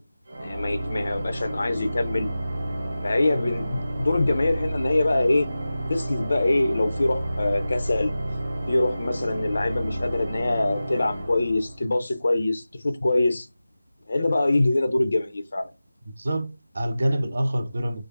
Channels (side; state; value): both; inverted; correlation -0.95